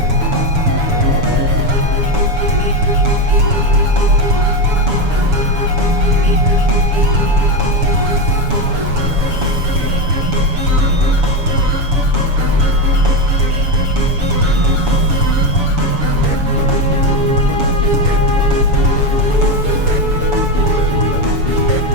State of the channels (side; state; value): left; late; 7.0 ms